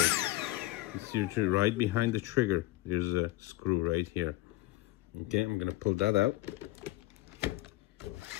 It's your right behind the trigger. There's a screw right here. Okay, I'm gonna pull that out.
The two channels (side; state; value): right; quieter; 18.3 dB